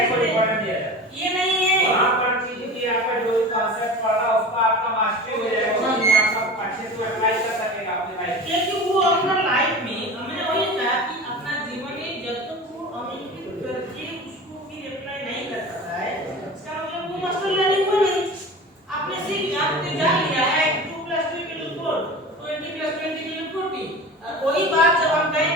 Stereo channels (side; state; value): both; normal; correlation 0.34